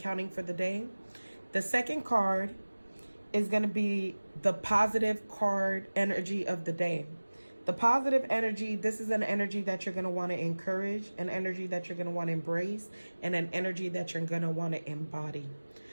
for the day. The second card is going to be the positive card energy of the day. The positive energy, this is an energy that you're going to want to encourage, an energy that you're going to want to embrace, and an energy that you're going to want to embody.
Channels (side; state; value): both; inverted; correlation -1.00